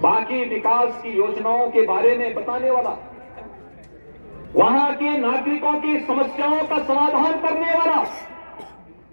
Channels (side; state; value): both; inverted; correlation -1.00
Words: बाकी विकास की योजनाओं के बारे में बताने वाला, वहां के नागरिकों की समस्याओं का समाधान करने वाला